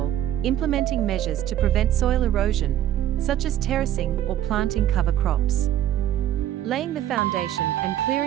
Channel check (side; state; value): left; quieter; 12.0 dB